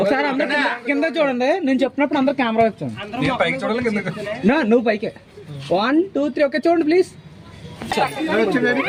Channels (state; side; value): identical; both; correlation 1.00